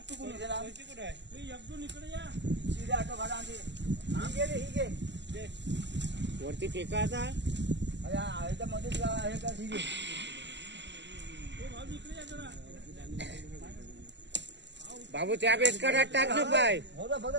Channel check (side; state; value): left; late; 0.51 ms